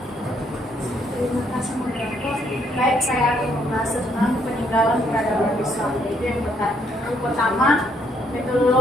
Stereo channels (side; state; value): both; normal; correlation 0.70